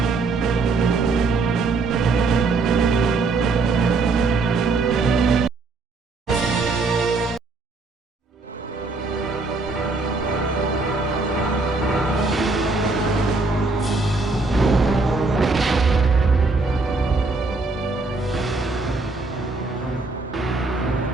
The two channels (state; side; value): quieter; left; 3.7 dB